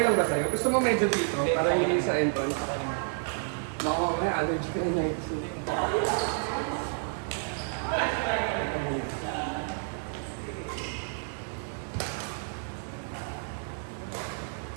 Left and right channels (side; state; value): left; silent; 58 dB below the other